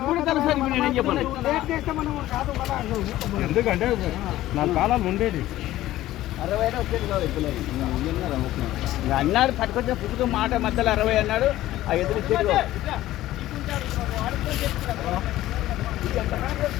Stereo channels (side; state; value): right; quieter; 15.0 dB